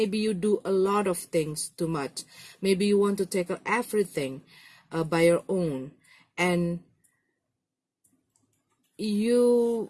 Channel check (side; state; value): both; identical; correlation 1.00